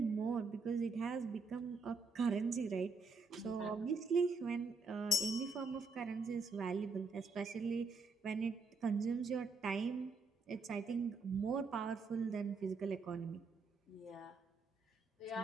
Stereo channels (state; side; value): quieter; left; 3.9 dB